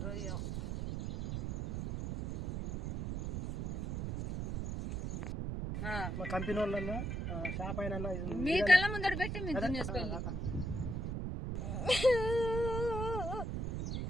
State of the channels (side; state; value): right; noise; rumble, 3 dB below the sound